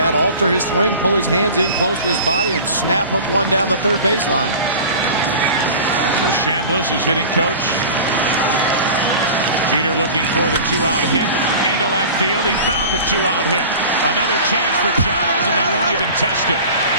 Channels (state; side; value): inverted; both; correlation -0.37